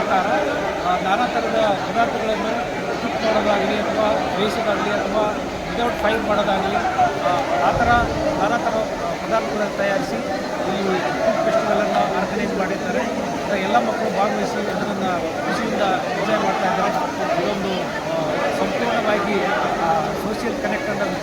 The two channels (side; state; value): both; identical; correlation 1.00